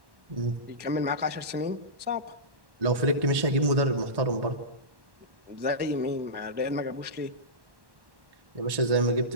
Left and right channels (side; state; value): left; late; 1.1 ms